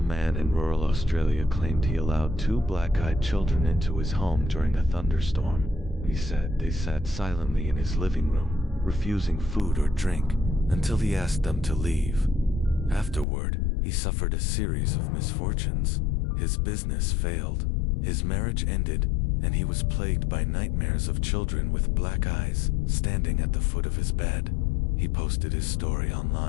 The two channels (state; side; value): drops out; right; at 13.2 s